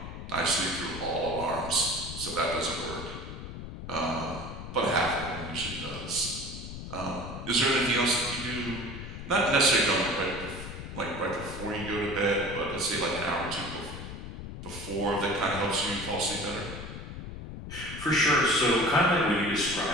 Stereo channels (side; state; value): left; noise; rumble, 9 dB below the sound